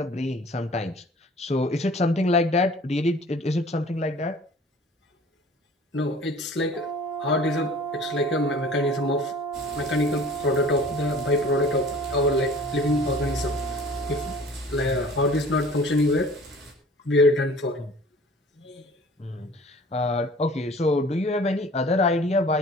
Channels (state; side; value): normal; both; correlation 0.47